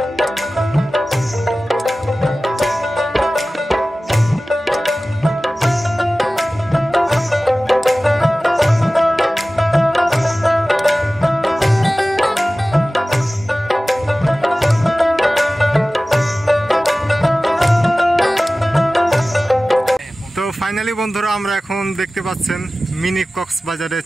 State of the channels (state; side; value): normal; both; correlation 0.97